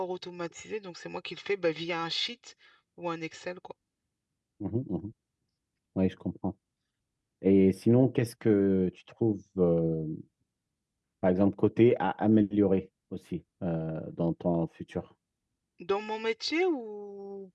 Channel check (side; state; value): both; identical; correlation 1.00